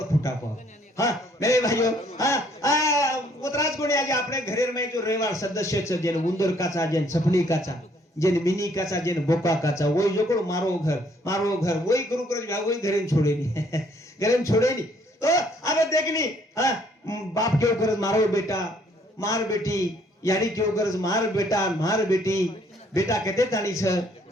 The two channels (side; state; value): both; normal; correlation 0.64